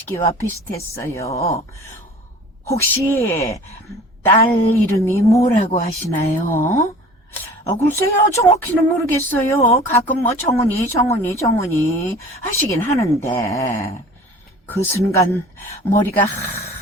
비슷했어요. 혹시 딸 이름이 뭐라고 하시나요? 글쎄요, 정확히는 모르겠어요. 가끔 정은이 하시긴 하는데. 그 순간 머리가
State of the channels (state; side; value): normal; both; correlation 0.44